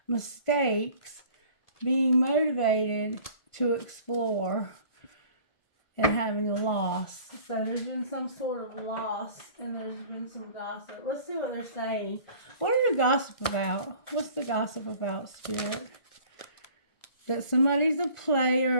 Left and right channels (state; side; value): late; right; 1.4 ms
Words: mistakes, being motivated to explore, and having a loss. So there's been some sort of loss, and there's been some gossip. Let's see what they're saying. What are the gossip about? What's the gossip about, Spirit? That somebody's a